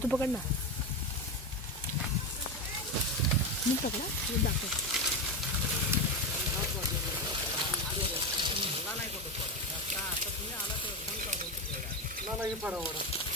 तू पकड ना. मी पकडा मी दाखव. नाही पडा वडा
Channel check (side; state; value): both; normal; correlation 0.15